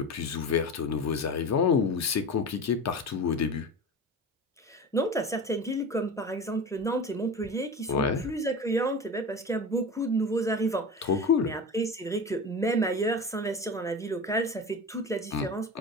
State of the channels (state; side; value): normal; both; correlation 0.30